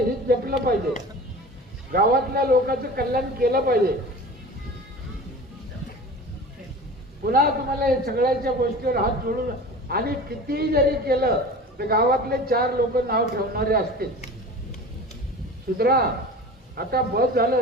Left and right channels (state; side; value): normal; both; correlation 0.36